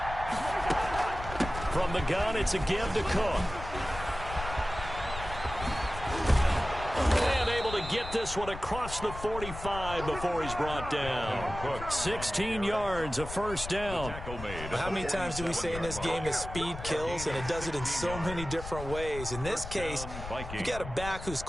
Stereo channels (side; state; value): left; noise; rumble, 10 dB below the sound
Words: From the gun, it's a give to Cook. And able to get this one across the 45 before he's brought down. 16 yards, a first down. How many times do we say in this game that speed kills, and it does it in so many different ways? In this case, you got a back who's